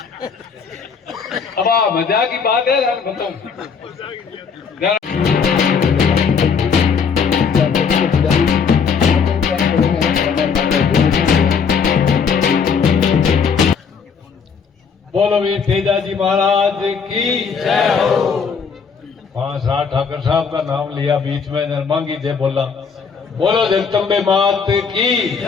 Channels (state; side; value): quieter; right; 6.0 dB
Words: अब मजाक की बात है यार बताऊं बोलो वीर तेजाजी महाराज की जय हो। 5-8 ठाकर साहब का नाम लिया बीच में नरमांगी जय बोला बोलो जगदम्बे मात की